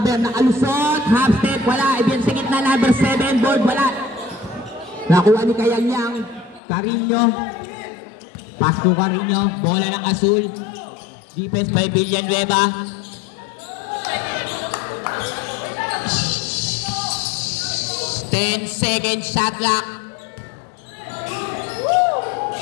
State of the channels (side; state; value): right; drops out; at 6.6 s